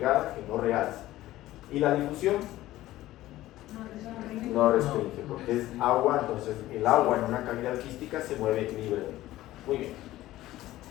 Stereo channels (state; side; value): quieter; right; 15.6 dB